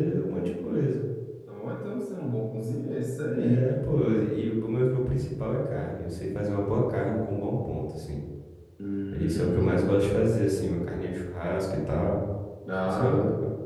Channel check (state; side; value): identical; both; correlation 1.00